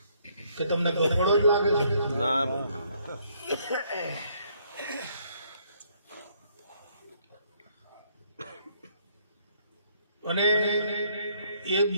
કે તમને ગફડો જ લાગે છે? ના ભાઈ અને એ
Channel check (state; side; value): inverted; both; correlation -0.67